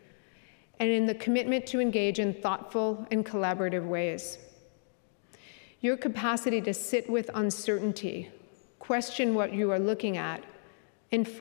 and in the commitment to engage in thoughtful and collaborative ways. Your capacity to sit with uncertainty, question what you are looking at, and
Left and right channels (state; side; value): silent; right; digital silence